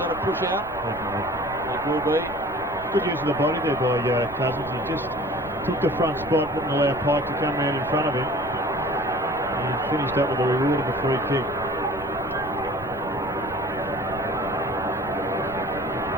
a push out? It will be. Good use of the body there by Cousins. He just took the front spot, didn't allow Pike to come round in front of him. And he finished up with the reward of a free kick.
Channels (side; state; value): right; noise; rumble, 19 dB below the sound